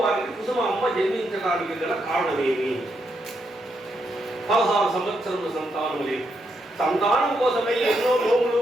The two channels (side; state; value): both; normal; correlation 0.80